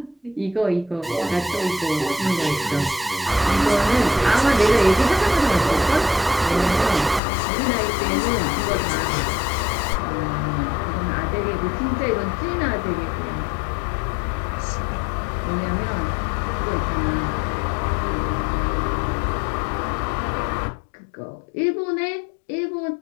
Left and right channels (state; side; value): drops out; right; at 7.2 s